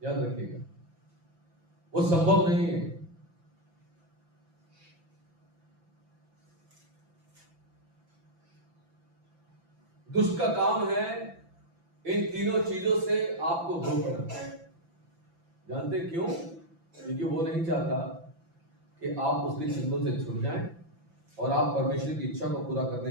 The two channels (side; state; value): left; late; 6.0 ms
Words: याद रखिएगा, वो संभव नहीं है। दुष्ट का काम है इन तीनों चीजों से आपको रोकना। जानते क्यों? क्योंकि वो नहीं चाहता कि आप उसके चिंतों से छूट जाएं और आप परमेश्वर की इच्छा को पूरा